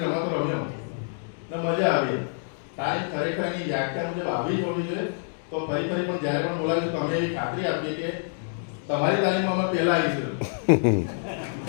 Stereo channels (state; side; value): silent; right; digital silence